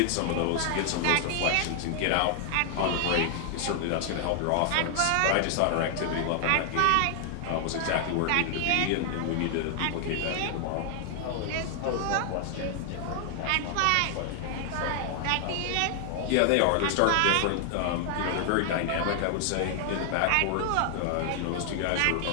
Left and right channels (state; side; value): different; both; correlation 0.00